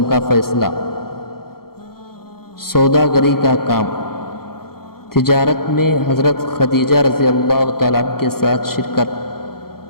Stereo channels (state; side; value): late; right; 0.94 ms